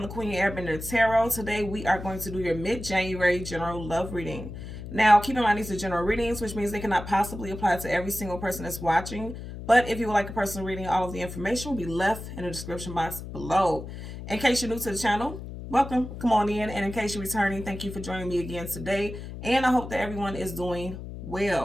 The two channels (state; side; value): noise; left; hum, 10 dB below the sound